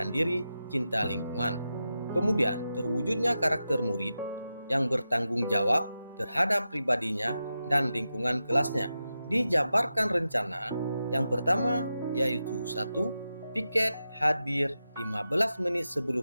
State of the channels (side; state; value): both; inverted; correlation -0.90